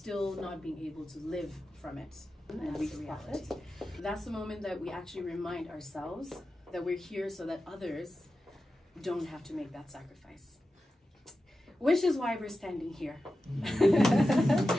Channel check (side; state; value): both; normal; correlation 0.92